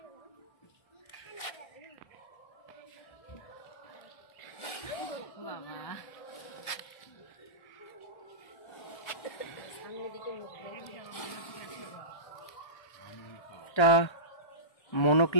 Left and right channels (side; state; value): right; late; 1.2 ms